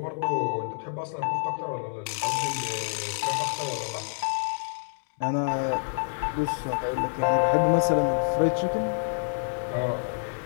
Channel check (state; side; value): silent; right; digital silence